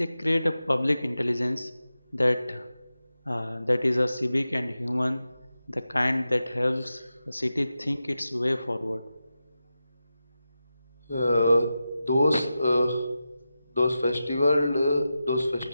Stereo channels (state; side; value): inverted; both; correlation -0.92